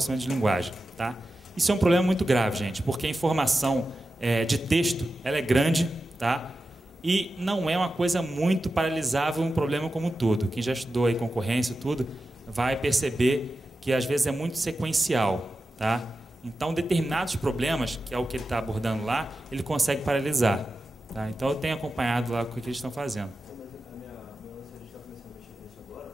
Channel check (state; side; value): normal; both; correlation 0.92